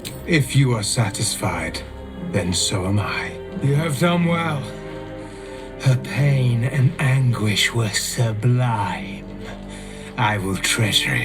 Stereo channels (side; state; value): both; identical; correlation 1.00